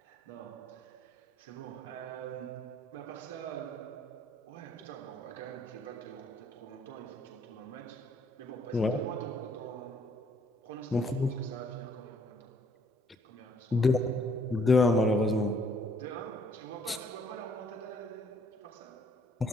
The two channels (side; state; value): both; normal; correlation 0.64